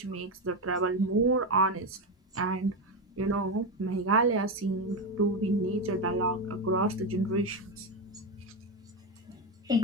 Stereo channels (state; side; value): normal; both; correlation 0.12